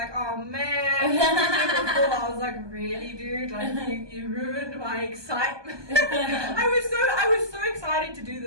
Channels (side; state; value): left; late; 1.2 ms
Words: oh man, before I was like, really dude, like you ruined my excitement. I was so excited to do